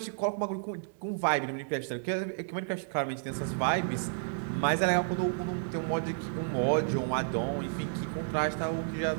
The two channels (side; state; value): left; silent; digital silence